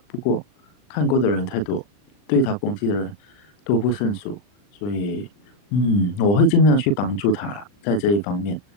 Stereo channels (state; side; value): late; right; 39 ms